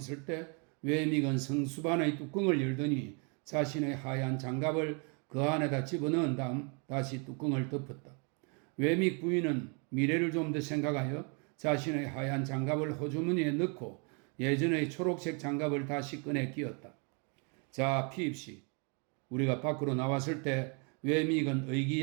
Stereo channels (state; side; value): quieter; left; 35.9 dB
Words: 때 외믹은 성수반의 뚜껑을 열더니 자신의 하얀 장갑을 그 안에다 집어넣은 다음 다시 뚜껑을 덮었다. 외믹 부인은 미래를 좀 더 생각하여 자신의 하얀 장갑을 호주머니에 넣고 예전의 초록색 장갑을 다시 꺼내 끼웠다. 자, 피입시. 우리가 밖으로 나왔을 때 외믹은